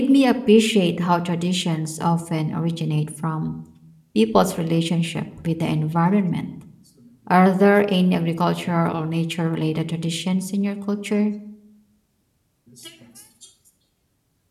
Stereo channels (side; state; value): both; identical; correlation 1.00